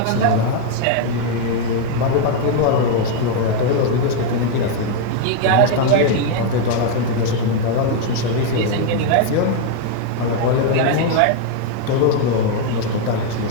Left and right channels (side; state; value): both; different; correlation 0.00